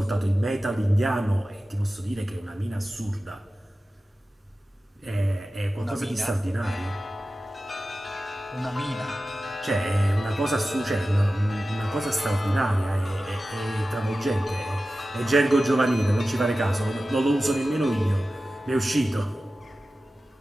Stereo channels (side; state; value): both; normal; correlation 0.95